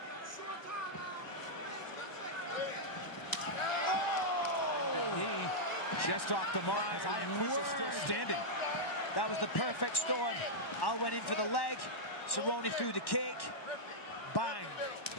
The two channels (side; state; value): right; late; 1.1 ms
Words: Just off the mark as Iaquinta's still standing. That was the perfect storm. Al went in for the leg. Cerrone threw the kick. Bang.